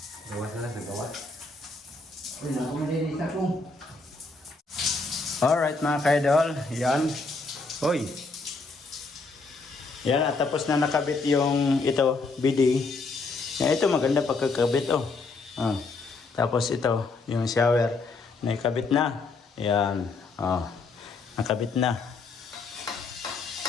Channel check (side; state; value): right; quieter; 3.8 dB